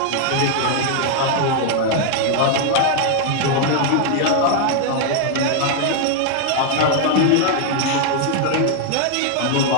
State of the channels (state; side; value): different; both; correlation 0.00